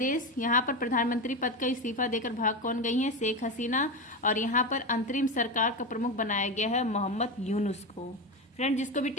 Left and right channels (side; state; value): both; normal; correlation 0.18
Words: यहाँ पर प्रधानमंत्री पद का इस्तीफा देकर भाग कौन गई हैं? शेख हसीना। और यहाँ पर अंतरिम सरकार का प्रमुख बनाया गया है मोहम्मद यूनुस को। फ्रेंड, जिसको भी